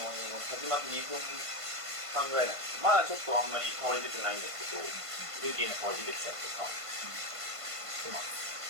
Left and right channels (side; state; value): left; late; 1.5 ms